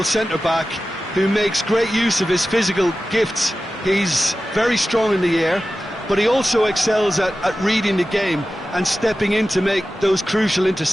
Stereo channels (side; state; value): both; normal; correlation 0.94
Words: centre-back who makes great use of his physical gifts. He's very strong in the air, but he also excels at reading the game and stepping in to make those crucial